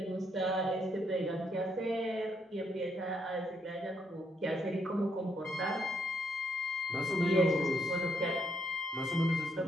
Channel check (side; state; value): both; normal; correlation 0.74